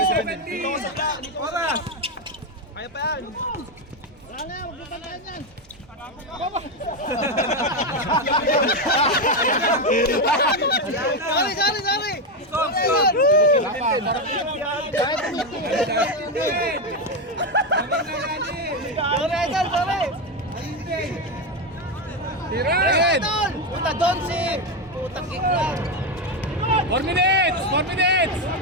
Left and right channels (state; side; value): normal; both; correlation 0.09